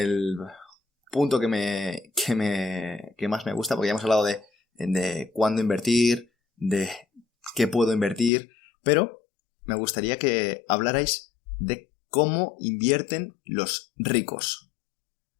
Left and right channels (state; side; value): drops out; right; at 8.3 s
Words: punto que más me gusta, porque ya hemos hablado de cuándo invertir, de qué puedo invertir, pero me gustaría que hablarais de cómo invierten los ricos.